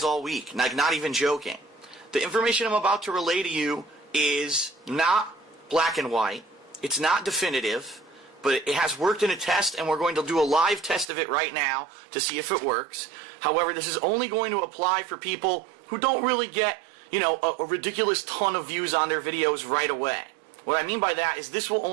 all week. Like, not even joking. The information I'm about to relay to you is not black and white. It's not definitive, but it has worked in a test, and we're going to do a live test of it right now to see if it works. However, this is only going to apply for people who don't really get, a ridiculous ton of views on their videos right away. What I mean by that is this will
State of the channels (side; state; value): left; drops out; at 11.1 s